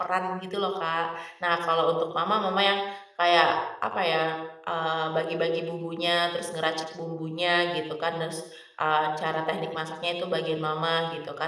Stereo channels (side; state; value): both; identical; correlation 1.00